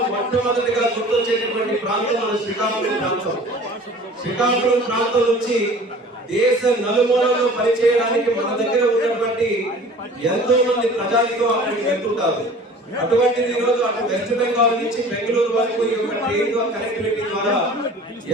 మొట్టమొదటిగా గుర్తొచ్చేటటువంటి ప్రాంతం మన శ్రీకాకుళం ప్రాంతం. శ్రీకాకుళం ప్రాంతం నుంచి దేశ నలుమూలలో పనిచేయడానికి మన దగ్గర ఉన్నటువంటి ఎంతో మంది ప్రజానికం అక్కడికి వెళ్తుంటారు. అటువంటిది ఈరోజు అటు వెస్ట్ బెంగాల్ నుంచి బెంగళూరు వరకు ఈ యొక్క ట్రైన్ కనెక్టివిటీ ద్వారా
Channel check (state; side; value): normal; both; correlation 0.45